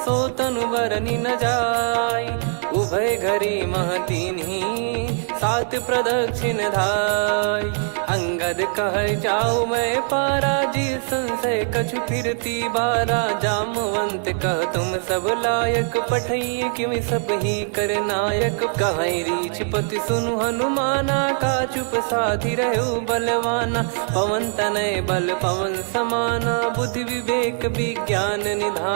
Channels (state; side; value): silent; left; 58 dB below the other